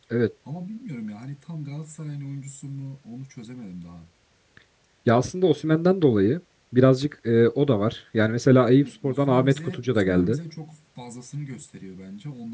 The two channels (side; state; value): both; identical; correlation 1.00